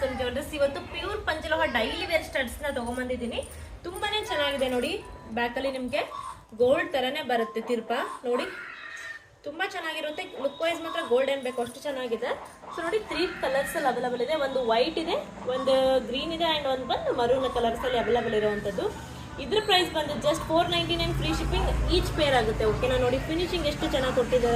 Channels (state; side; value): identical; both; correlation 1.00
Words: ಸಂಜೋರ್ಸ್. ಇವತ್ತು ಪ್ಯೂರ್ ಪಂಚಲೋಹ ಡೈಲಿ ವೇರ್ ಸ್ಟಡ್ಸ್ನ ತೊಗೊಂಬಂದಿದ್ದೀನಿ. ತುಂಬಾನೇ ಚೆನ್ನಾಗಿದೆ ನೋಡಿ. ಬ್ಯಾಕಲ್ಲಿ ನಿಮಗೆ ಗೋಲ್ಡ್ ಥರನೇ ಬರುತ್ತೆ ತಿರ್ಪ ನೋಡಿ. ತುಂಬ ಚೆನ್ನಾಗಿರುತ್ತೆ. ಲುಕ್ ವೈಸ್ ಮಾತ್ರ ಗೋಲ್ಡ್ ಏನು ಬೇಕು ಅಷ್ಟು ಚೆನ್ನಾಗಿದೆ. ಸೊ ನೋಡಿ, 3 ಕಲರ್ಸಲ್ಲಿ ಅವೈಲಬಲ್ ಇದೆ. ಒಂದು ವೈಟ್ ಇದೆ, ಒಂದು ಗ್ರೀನ್ ಇದೆ ಆ್ಯಂಡ್ ಒಂದು ಬಂದು ಮರೂನ್ ಕಲರ್ಸಲ್ಲಿ ಅವೈಲಬಲ್ ಇರುವಂಥದ್ದು. ಇದ್ರ ಪ್ರೈಸ್ ಬಂದು just 499 free shipping each pair ಆಗುತ್ತೆ. ಓಕೆನಾ? ನೋಡಿ ಫಿನಿಶಿಂಗ್ ಎಷ್ಟು ಚೆನ್ನಾಗಿ